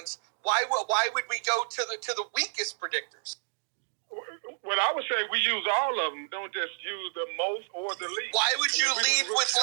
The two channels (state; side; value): silent; left; digital silence